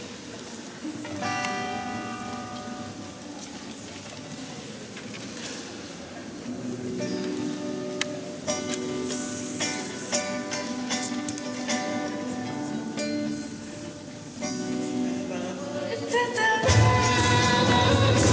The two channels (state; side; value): identical; both; correlation 1.00